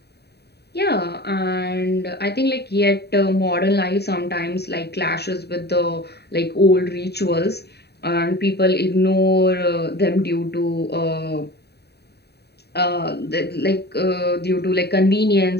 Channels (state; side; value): late; right; 0.48 ms